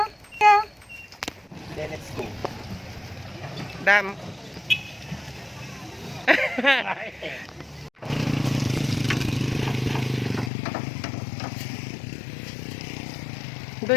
Then let's go. Dam.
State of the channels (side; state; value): right; drops out; at 10.5 s